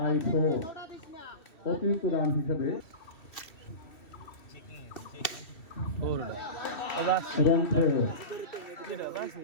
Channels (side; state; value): right; late; 2.7 ms